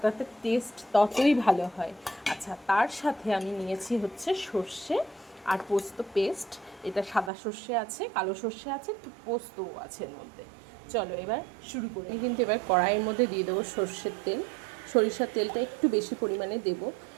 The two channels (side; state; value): left; drops out; at 7.3 s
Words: টেস্ট ততই ভালো হয়। আচ্ছা, তার সাথে আমি নিয়েছি হচ্ছে সর্ষে আর পোস্ত পেস্ট। এটা সাদা সর্ষে আছে, কালো সর্ষে আছে, পোস্তও আছে এর মধ্যে। চলো এবার শুরু করি। আমি কিন্তু এবার কড়াইয়ের মধ্যে দিয়ে দেবো সর্ষের তেল। সরিষার তেলটা একটু বেশি পরিমাণে দেব।